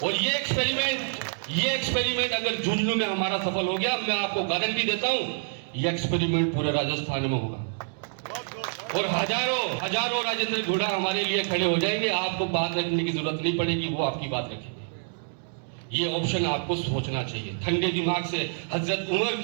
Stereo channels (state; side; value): silent; left; digital silence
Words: और ये एक्सपेरिमेंट अगर झुंझुनू में हमारा सफल हो गया, मैं आपको गारंटी देता हूं ये एक्सपेरिमेंट पूरे राजस्थान में होगा और हजारों राजेंद्र घोड़ा हमारे लिए खड़े हो जाएंगे। आपको बात रखने की जरूरत नहीं पड़ेगी, वो आपकी बात रखेंगे। ये ऑप्शन आपको सोचना चाहिए ठंडे दिमाग से। हजरत उमर